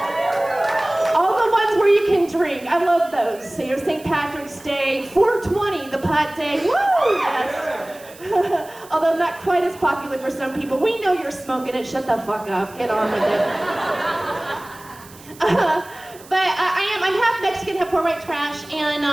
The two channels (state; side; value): noise; right; hiss, 21 dB below the sound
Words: All the ones where you can drink. I love those. So, you know, St. Patrick's Day, 420, the pot day. Woo! Yes. Although not quite as popular for some people. We know you're smoking it. Shut the fuck up. Get on with it. I'm half Mexican, half poor white trash, and